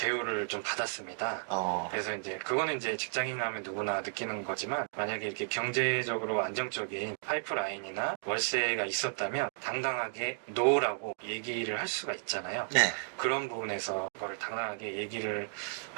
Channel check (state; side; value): silent; left; digital silence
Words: 좀 받았습니다. 그래서 이제 그거는 이제 직장인 하면 누구나 느끼는 거지만 만약에 이렇게 경제적으로 안정적인 파이프라인이나 월세가 있었다면 당당하게 노라고 얘기를 할 수가 있잖아요. 네. 그런 부분에서 그거를 당당하게 얘기를